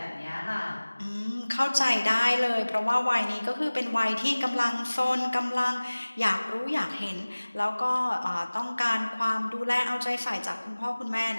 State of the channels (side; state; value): both; inverted; correlation -1.00